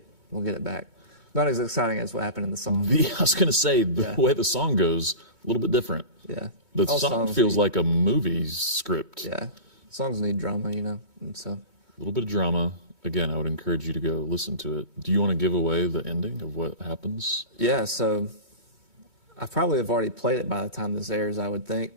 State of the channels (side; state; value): right; late; 3.1 ms